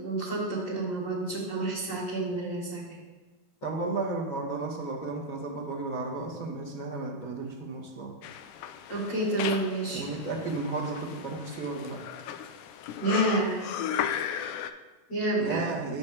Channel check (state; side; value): late; right; 15 ms